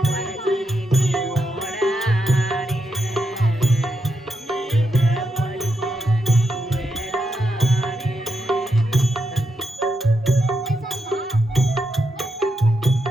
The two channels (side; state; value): both; normal; correlation 0.83